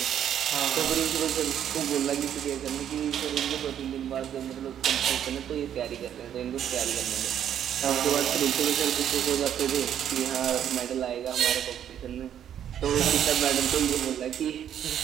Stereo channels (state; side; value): quieter; left; 9.8 dB